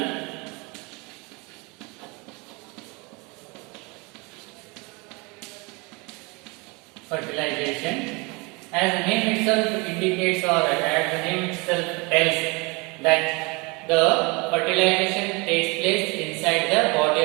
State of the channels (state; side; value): quieter; left; 27.7 dB